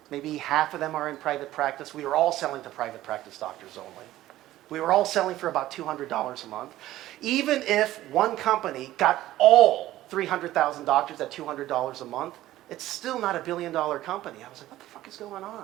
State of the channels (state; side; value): quieter; left; 14.9 dB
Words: Maybe half of them are in private practice. We were all selling to private practice doctors only. We were all selling for about $200 a month. Even if one company got all 300,000 doctors at $200 a month, it's still not a billion-dollar company. I was like, what the fuck is going on?